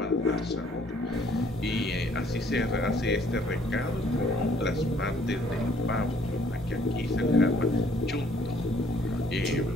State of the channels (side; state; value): both; normal; correlation 0.61